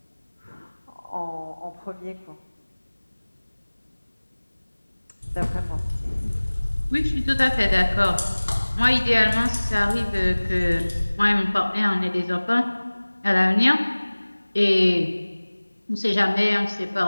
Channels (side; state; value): both; inverted; correlation -1.00